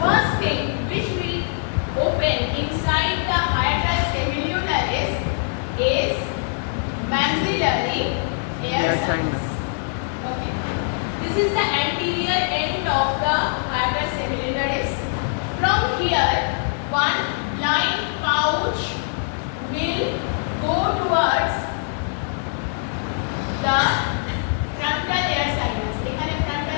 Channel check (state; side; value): silent; right; digital silence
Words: thing which will open inside the hiatus semilunaris is maxillary air sinus. Okay. This is the anterior end of the hiatus semilunaris. From here, one blind pouch will go towards the frontal air sinus. এখানে